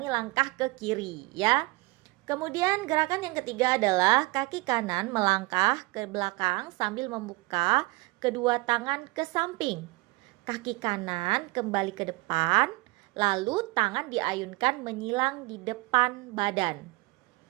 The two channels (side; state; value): left; quieter; 23.3 dB